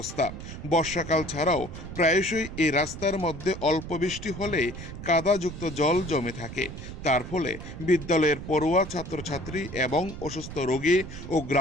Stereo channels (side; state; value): right; noise; rumble, 10 dB below the sound